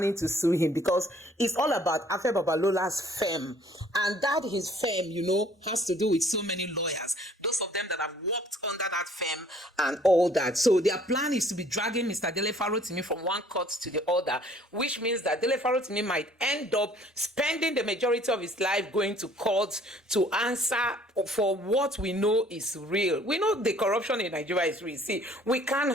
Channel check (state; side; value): normal; both; correlation 0.57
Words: to sue him because it's all about Afe Babalola's firm. And that his firm, has to do with so many lawyers. Those of them that have worked under that firm and all that. So their plan is to be dragging Mr. Dele Farotimi from one court to the other, which means that Dele Farotimi might end up spending the majority of his life going to court to answer for what we know is real. We know the corruption in Nigeria is real. See, we can't